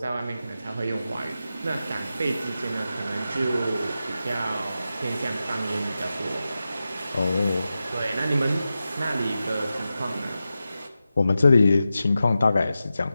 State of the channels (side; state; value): both; inverted; correlation -0.92